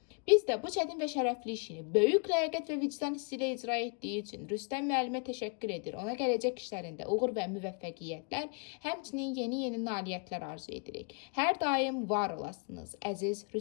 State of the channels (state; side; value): quieter; right; 36.0 dB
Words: Biz də bu çətin və şərəfli işini böyük ləyaqət və vicdan hissi ilə icra etdiyi üçün Rüstəm müəllimə təşəkkür edir. Ona gələcək işlərində uğur və müvəffəqiyyətlər, həmçinin yeni nailiyyətlər arzu edirik. Hər daim var olasınız, əziz